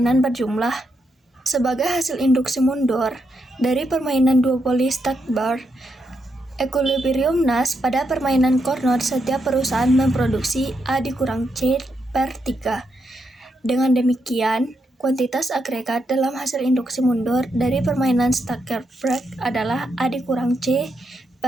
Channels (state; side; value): normal; both; correlation 0.82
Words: berjumlah. Sebagai hasil induksi mundur dari permainan duopoli Stackbar equilibrium Nash pada permainan Carnot, setiap perusahaan memproduksi A dikurang C per 3. Dengan demikian, kuantitas agregat dalam hasil induksi mundur dari permainan Stackbar adalah A dikurang C